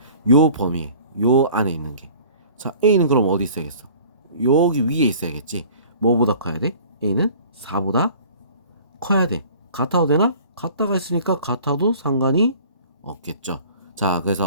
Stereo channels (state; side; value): inverted; both; correlation -0.48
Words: 요 범위에, 요 안에 있는 게. 자, A는 그럼 어디 있어야겠어? 여기 위에 있어야겠지. 뭐보다 커야 돼? A는 4보다 커야 돼. 같아도 되나? 같다가 있으니까 같아도 상관이 없겠죠. 자,